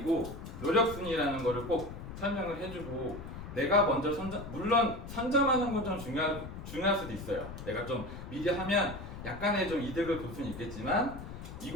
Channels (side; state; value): left; noise; rumble, 10 dB below the sound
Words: 노력순이라는 거를 꼭 설명을 해주고 내가 먼저 물론 선점하는 건 좀 중요할 중요할 수도 있어요. 내가 좀 미리 하면 약간의 좀 이득을 볼 수는 있겠지만